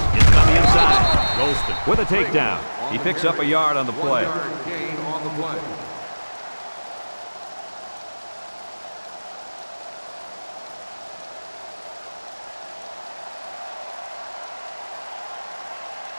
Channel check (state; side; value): inverted; both; correlation -1.00